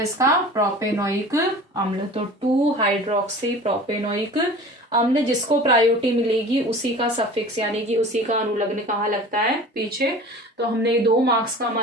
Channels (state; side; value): normal; both; correlation 0.40